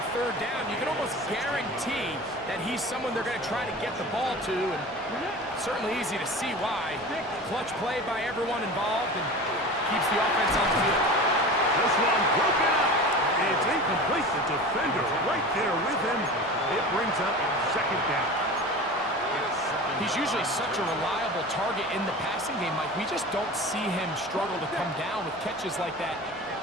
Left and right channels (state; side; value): normal; both; correlation 0.34